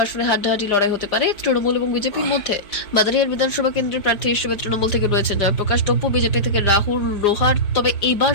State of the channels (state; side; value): late; right; 5.1 ms